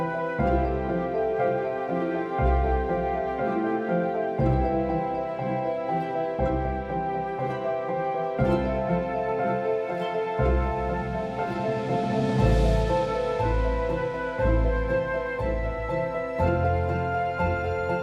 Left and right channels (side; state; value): both; identical; correlation 1.00